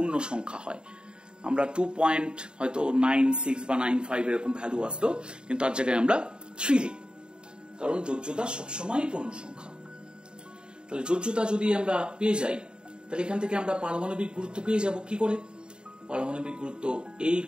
সংখ্যা হয়। আমরা 2 হয়তো 96 বা 95 এরকম ভ্যালু আসতো, কিন্তু তার জায়গায় আমরা 3 লিখব, কারণ যোজ্যতা সবসময় পূর্ণ সংখ্যা। তাহলে যোজ্যতা যদি আমরা পেয়ে যাই তাহলে এখান থেকে আমরা পারমাণবিক গুরুত্ব পেয়ে যাব কি করে, পারমাণবিক গুরুত্ব A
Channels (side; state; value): left; late; 0.050 ms